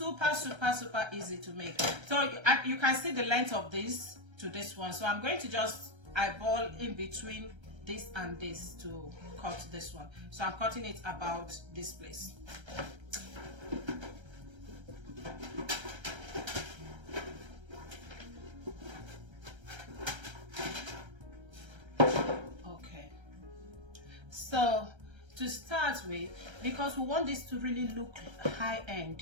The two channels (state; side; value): late; left; 1.3 ms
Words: easy to make. So you can see the length of this to this one. So I'm going to just eyeball in between this and this to cut this one. So I'm cutting it about this place. Okay. So to start with, because we want this to really look high